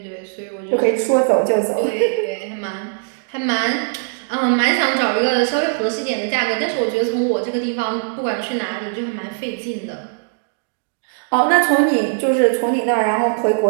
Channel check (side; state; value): left; silent; 66 dB below the other